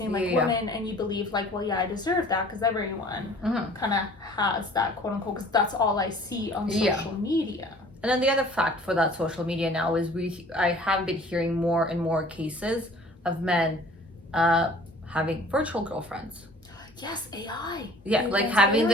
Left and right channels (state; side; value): normal; both; correlation 0.50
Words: like women, and you believe like, well, I deserve that because everyone kind of has that, quote unquote, because that's all I see on social media. And then the other fact for that social media now is I have been hearing more and more cases of men having virtual girlfriends. Yes, AI. Yeah, like having